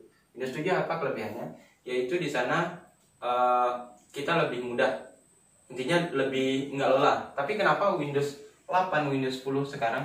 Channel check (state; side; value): identical; both; correlation 1.00